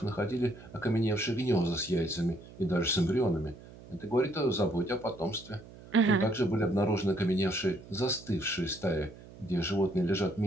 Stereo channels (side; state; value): right; noise; hum, 19 dB below the sound